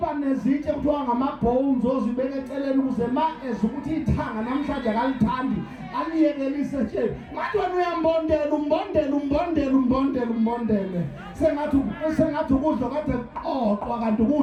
nezitshe kuthiwa ngama-bones ozibeka eceleni ukuze ma ukuthi ithanga namhlanje akalithandi aliyekelise nje manje wena umbondele sengathi ukudla kade kuqoqwa kanti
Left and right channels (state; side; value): identical; both; correlation 1.00